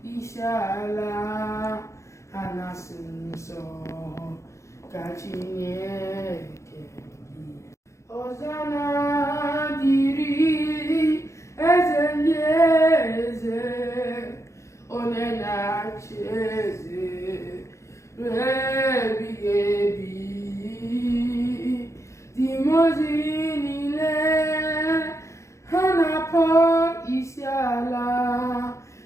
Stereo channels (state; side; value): late; right; 0.14 ms